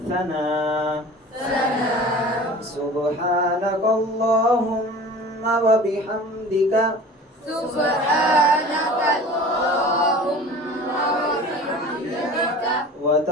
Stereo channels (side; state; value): both; normal; correlation 0.41